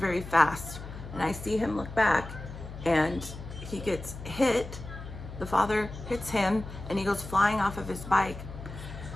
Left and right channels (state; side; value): noise; left; hum, 11 dB below the sound